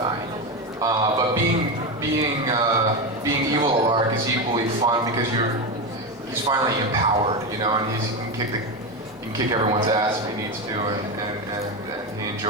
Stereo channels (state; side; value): normal; both; correlation 0.15